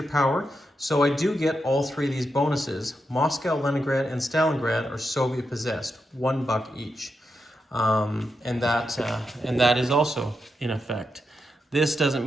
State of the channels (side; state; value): both; normal; correlation 0.86